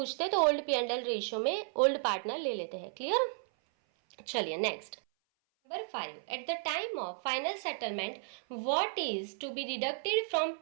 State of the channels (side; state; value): left; silent; 55 dB below the other